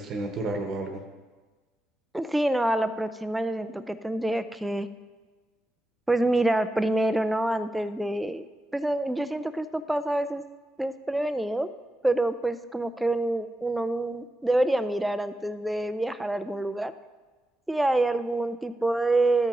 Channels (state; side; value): normal; both; correlation 0.91